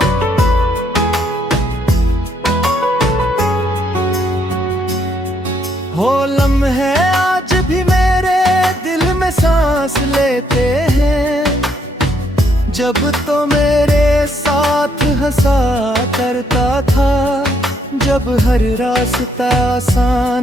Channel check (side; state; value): both; normal; correlation 0.71